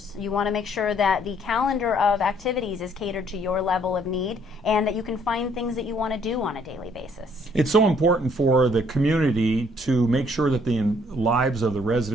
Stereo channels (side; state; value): both; normal; correlation 0.64